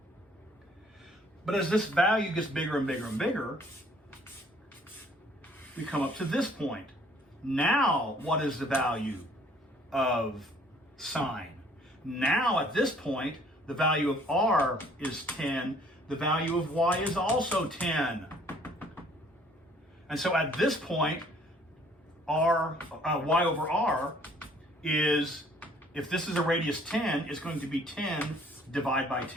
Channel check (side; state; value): both; normal; correlation 0.59